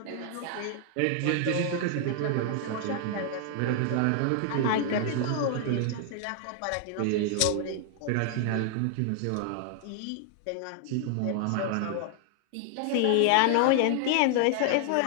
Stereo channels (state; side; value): different; both; correlation 0.00